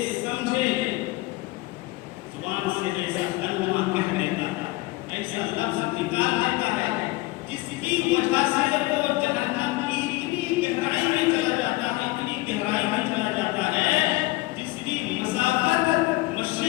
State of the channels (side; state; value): right; quieter; 21.1 dB